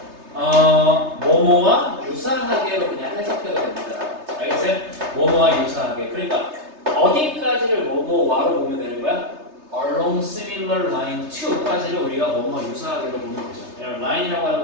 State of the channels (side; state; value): left; late; 3.3 ms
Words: 뭐뭐와 유사하게로 그냥 해석해도 됩니다. 알겠어요? 뭐뭐와 유사하게. 그러니까 어디까지를 뭐뭐와로 보면 되는 거야? along similar line to까지를 우리가 뭐뭐 유사하게로 보면 되죠. 라인이라고